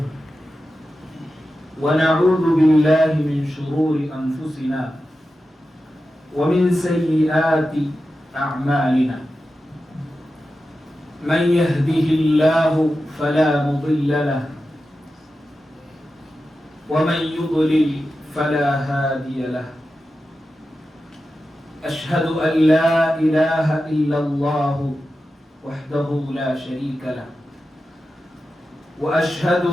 ونعوذ بالله من شرور أنفسنا ومن سيئات أعمالنا. من يهده الله فلا مضل له ومن يضلل فلا هادي له. أشهد أن لا إله إلا الله وحده لا شريك له، وأشهد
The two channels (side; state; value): both; normal; correlation 0.92